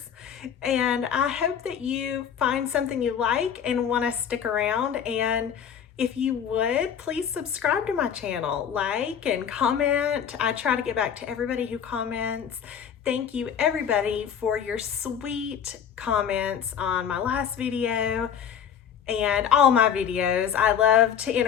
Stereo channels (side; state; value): right; quieter; 8.2 dB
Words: And I hope that you find something you like and want to stick around. And if you would, please subscribe to my channel, like and comment. I try to get back to everybody who comments. Thank you everybody for your sweet comments on my last video and all my videos. I love to